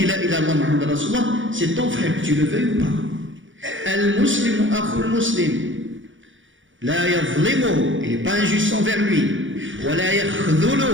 la ilaha illallah Muhammad Rasulullah, c'est ton frère, que tu le veuilles ou pas. Al-Muslimu akhul muslim. La yadhlimuhu, il n'est pas injuste envers lui. Wa la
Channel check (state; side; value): late; left; 0.56 ms